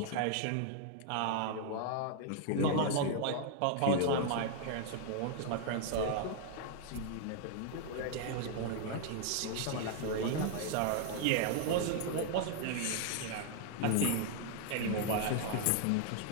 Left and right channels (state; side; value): different; both; correlation 0.00